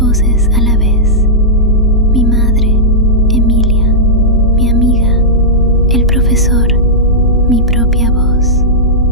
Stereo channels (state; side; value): normal; both; correlation -0.12